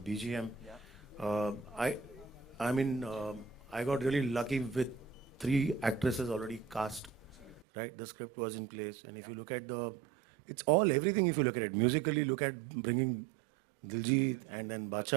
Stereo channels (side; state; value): left; drops out; at 7.7 s